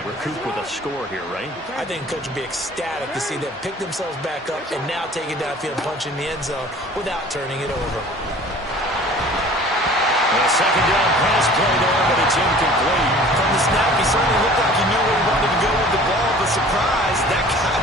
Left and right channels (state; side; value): normal; both; correlation 0.47